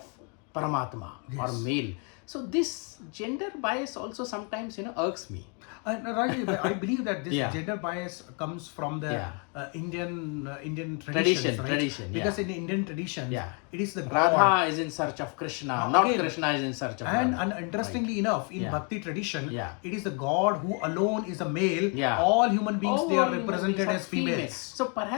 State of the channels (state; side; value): quieter; right; 36.9 dB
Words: Paramatma or Yes. male. So this gender bias also sometimes irks me. And Rajesh, I believe that this Yeah. gender bias comes from the Yeah. Indian Tradition, traditions, right? tradition, yeah. Because in the Indian tradition, Yeah. it is the Radha god. is in search of Krishna, Now, not again, Krishna is in search of And, Radha. interestingly enough, in Yeah. Bhakti tradition, Yeah. it is the god who alone is a male. Yeah. All human beings, All they are human represented beings are as females. So